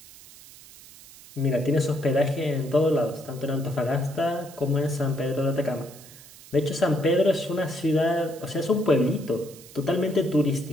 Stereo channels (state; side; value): noise; right; hiss, 20 dB below the sound